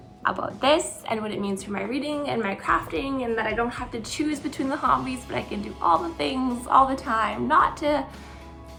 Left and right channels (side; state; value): both; identical; correlation 1.00